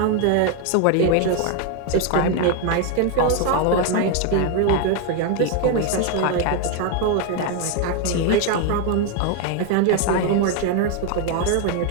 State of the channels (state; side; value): different; both; correlation 0.01